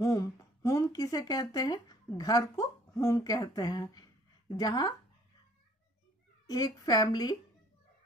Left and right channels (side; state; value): both; normal; correlation 0.57